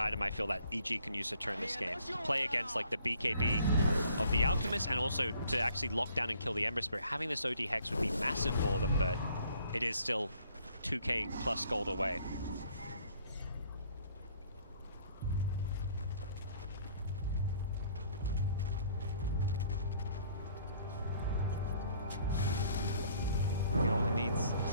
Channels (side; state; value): both; inverted; correlation -0.59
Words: I feel that EG can use to turn this game. Play against like the BKB of the Alchemist and also to actually lock down and kill the Ember Spirit. Having this OD Hex would be massive for them, but it is still 2k plus gold away. He only needs